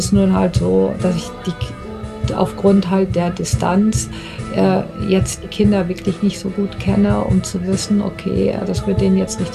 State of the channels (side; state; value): both; identical; correlation 1.00